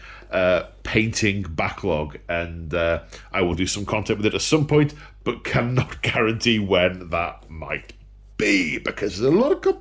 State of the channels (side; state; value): both; identical; correlation 1.00